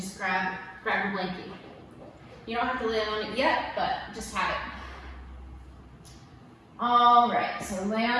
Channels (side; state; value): both; identical; correlation 1.00